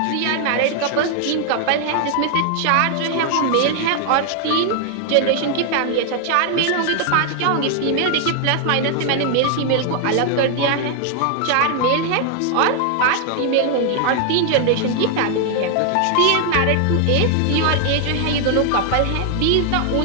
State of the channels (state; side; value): different; both; correlation 0.00